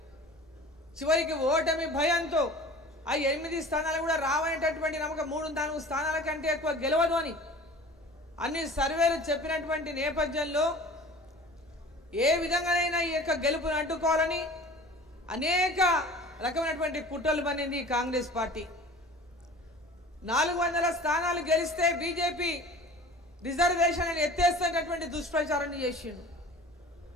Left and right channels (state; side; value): normal; both; correlation 0.42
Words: చివరికి ఓటమి భయంతో ఆ 8 స్థానాలు కూడా రావనేటటువంటి నమ్మకం 3-4 స్థానాల కంటే ఎక్కువ గెలవదు అని అన్ని సర్వేలు చెప్పినటువంటి నేపథ్యంలో ఏ విధంగానైనా ఈ యొక్క గెలుపును అడ్డుకోవాలని అనేక రకమైనటువంటి కుట్రలు పన్నింది కాంగ్రెస్ పార్టీ. 400 స్థానాలు గెలిస్తే బీజేపీ రిజర్వేషన్ అని ఎత్తేస్తున్నటువంటి దుష్ప్రచారాన్ని చేసిండు.